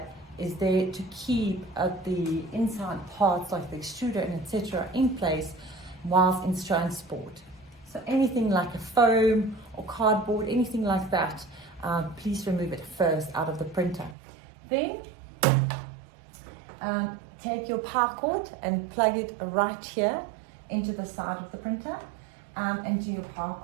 is there to keep the inside parts like the extruder and etc. in place whilst in transport. So anything like a foam or cardboard, anything like that, please remove it first out of the printer. Then take your power cord and plug it right here into the side of the printer and do your power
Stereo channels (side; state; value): left; drops out; at 14.2 s